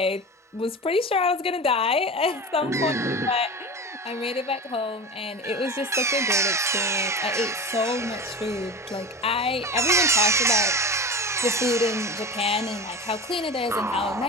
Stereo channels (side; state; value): both; normal; correlation 0.31